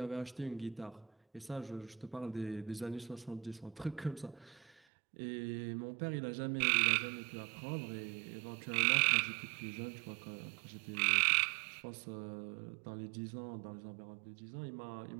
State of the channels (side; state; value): left; drops out; at 4.8 s